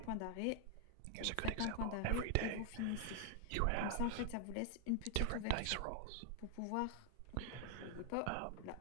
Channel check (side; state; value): both; different; correlation 0.00